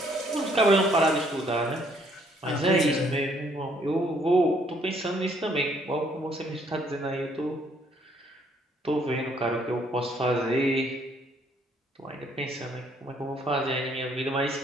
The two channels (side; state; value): both; normal; correlation 0.66